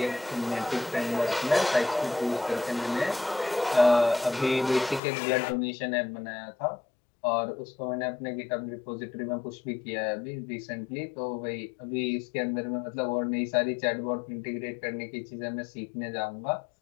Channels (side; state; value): right; drops out; at 5.0 s